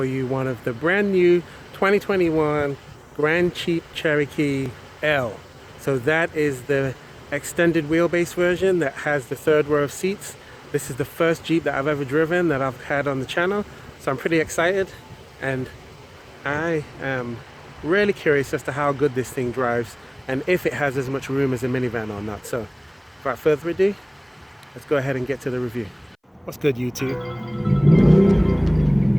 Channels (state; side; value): identical; both; correlation 1.00